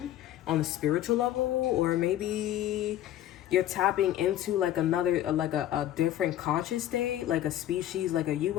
on a spiritual level, or maybe you're tapping into like a different conscious state, like a species, like a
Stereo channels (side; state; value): right; quieter; 12.6 dB